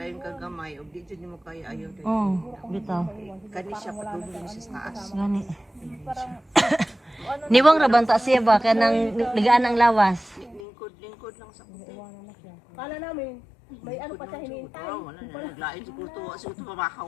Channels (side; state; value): right; drops out; at 10.6 s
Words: ka gamay ug di jud mo kaya ayaw dai. Bitaw. Kani siya patulong sa taas. Gani. Niwang rabanta siya ba? Kanang ligaan ng lawas. Lingkod lang sa puti. Kala namin, may ano pa siya hinihintay. Wala na naglain siguro to